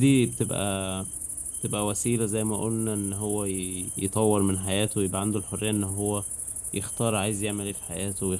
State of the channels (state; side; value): identical; both; correlation 1.00